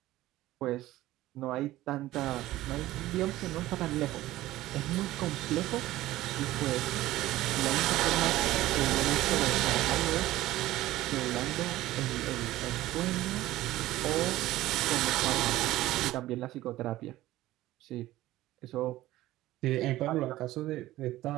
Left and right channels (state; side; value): quieter; left; 16.0 dB